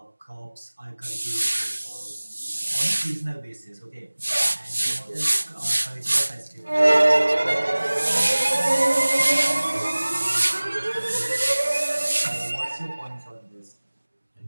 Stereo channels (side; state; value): both; inverted; correlation -1.00